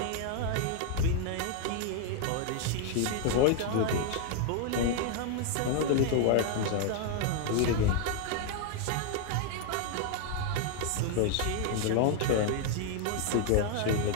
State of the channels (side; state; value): both; different; correlation 0.00